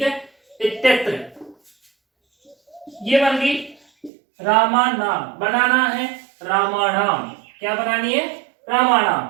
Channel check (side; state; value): left; drops out; at 4.1 s